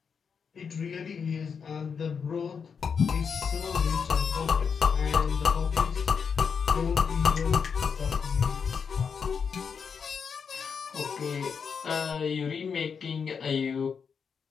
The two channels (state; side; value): quieter; right; 6.2 dB